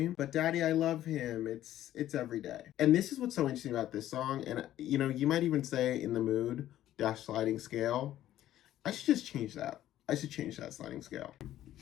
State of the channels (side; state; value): right; quieter; 12.9 dB